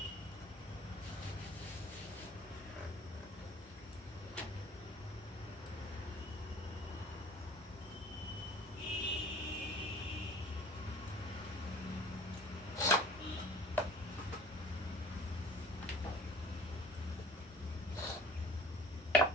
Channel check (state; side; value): normal; both; correlation 0.46